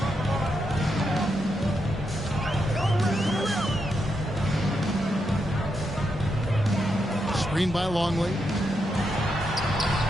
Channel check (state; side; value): normal; both; correlation 0.83